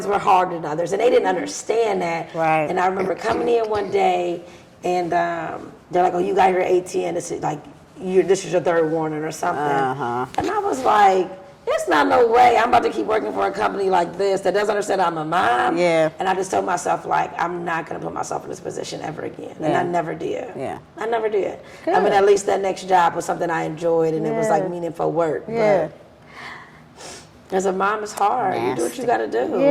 were harder than others. And they didn't understand that. And I remember coming in one day, and they're like, oh, you got here at 8:10. This is like, this is your third warning or something. And I was like, it's not no way I'm about to keep working for a company like this that doesn't understand I'm a mom. And I just told myself, like, I'm not going to put myself in this position ever again. And I never did. I never did. Good. I mean, at least that next job was something I enjoyed, and it was like meaningful work. But as a mom, it's hard. You do what you got to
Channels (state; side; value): identical; both; correlation 1.00